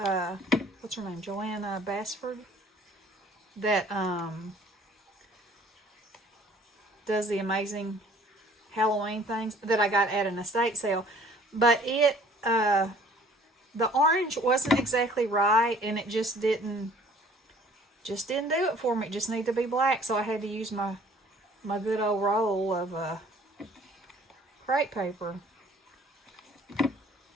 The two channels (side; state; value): both; normal; correlation 0.54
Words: her name? Joanna Bassford. That, does the amazing Halloween things that I got at an estate sale. But it the orange wasn't exactly right, and it just didn't do it for me. It just needed to be black, so I had to use my good old roll of crepe paper,